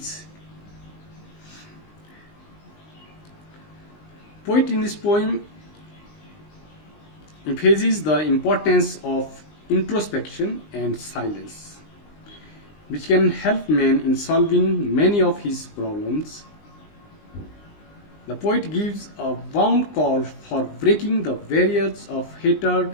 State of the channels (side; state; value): right; late; 19 ms